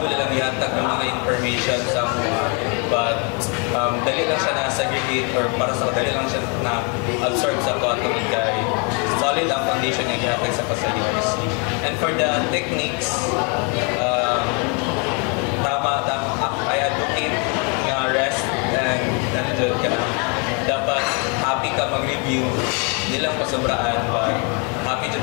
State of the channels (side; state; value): right; quieter; 33.6 dB